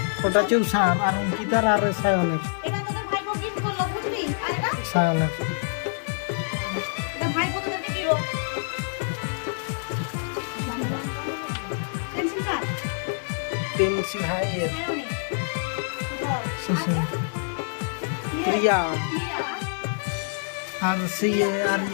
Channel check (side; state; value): right; silent; 61 dB below the other